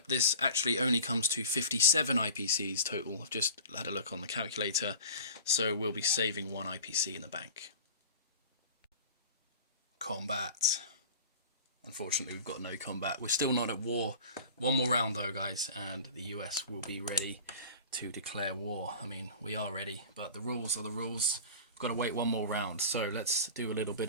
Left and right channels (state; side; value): inverted; both; correlation -0.37